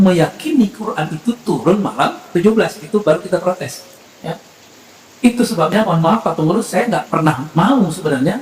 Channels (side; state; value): both; identical; correlation 1.00